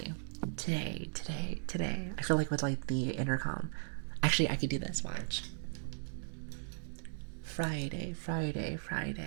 I feel like with like the intercom. Actually, I could do this, watch. Friday.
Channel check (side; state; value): left; silent; digital silence